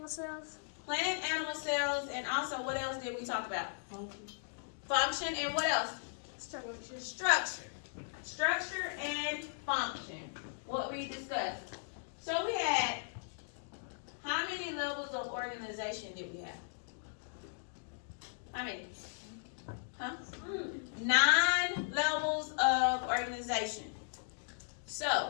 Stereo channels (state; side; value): silent; right; digital silence